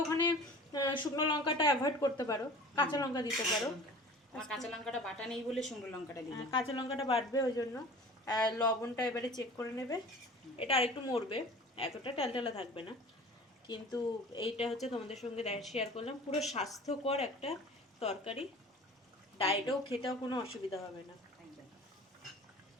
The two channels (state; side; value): normal; both; correlation 0.42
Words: ওখানে শুকনো লঙ্কাটা অ্যাভয়েড করতে পারো, কাঁচা লঙ্কা দিতে পারো। আমার কাঁচা লঙ্কাটা বাটা নেই বলে শুকনো লঙ্কাটা দিই। কাঁচা লঙ্কাটা বাটবে, ওই জন্য লবণটা এবারে চেক করে নেবে। এটা আরেকটু মরবে, এতটা টালটালা থাকবে না। কিন্তু এইটা হচ্ছে তোমাদের সঙ্গে শেয়ার করলাম পুরো স্বাস্থ্যকর একটা তরকারি। ডায়েটেও খেতেও কোনো অসুবিধা হবে না।